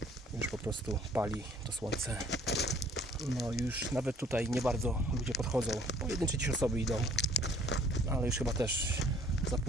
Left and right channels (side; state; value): both; normal; correlation 0.57